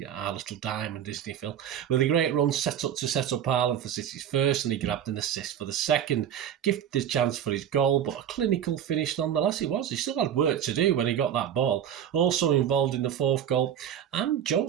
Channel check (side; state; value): left; quieter; 9.6 dB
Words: Our little diamond, isn't he, Phil? With a great run set up Haaland for City's first, and he grabbed an assist for the second. Gifted the chance for his goal, but a clinical finish nonetheless it was. He still had work to do when he got that ball. Also involved in the fourth goal. And